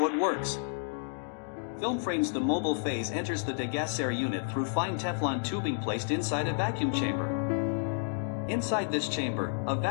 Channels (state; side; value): silent; right; digital silence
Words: it works. Film frames. The mobile phase enters the degasser unit through fine Teflon tubing placed inside a vacuum chamber. Inside this chamber, a